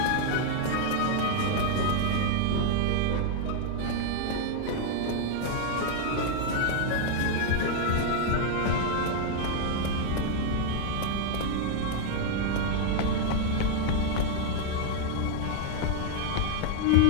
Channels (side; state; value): both; different; correlation 0.00